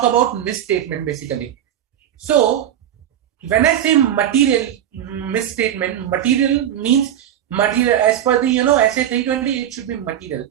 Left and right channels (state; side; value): quieter; left; 10.8 dB